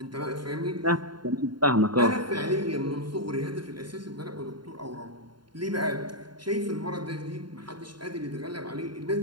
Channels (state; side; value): late; left; 0.72 ms